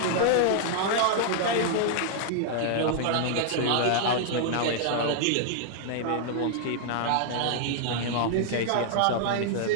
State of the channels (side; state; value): both; different; correlation -0.01